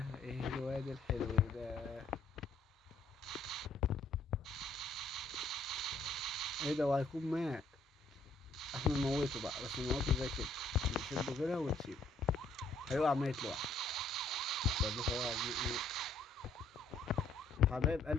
ايه الواد الحلو ده؟ ايه ده؟ وهيكون مات. احنا نموته بقى، بس نموته زي كده، نشده كده ونسيبه. هيقع ميت لوحده. حبايب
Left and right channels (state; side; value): quieter; right; 3.1 dB